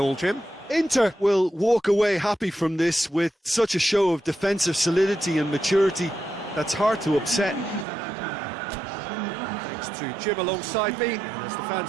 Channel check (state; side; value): drops out; left; at 7.9 s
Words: Jim? Inter will walk away happy from this with such a show of defensive solidity and maturity that's hard to upset. Thanks to Jim alongside me, and as the